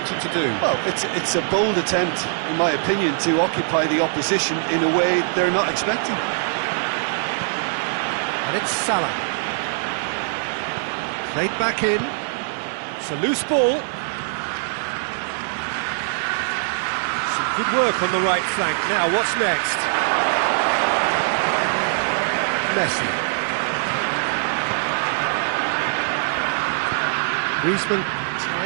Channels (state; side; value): silent; left; digital silence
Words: to do? Well, it's a bold attempt, in my opinion, to occupy the opposition in a way they're not expecting. And it's Salah. Played back in. It's a loose ball. Some good work on the right flank. Now, what's next? Messi. Griezmann